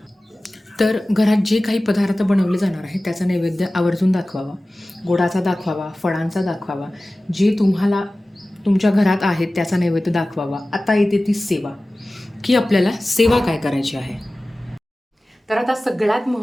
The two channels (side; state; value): both; normal; correlation 0.97